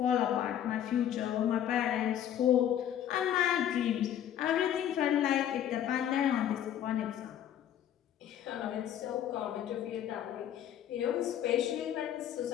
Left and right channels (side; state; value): right; quieter; 10.5 dB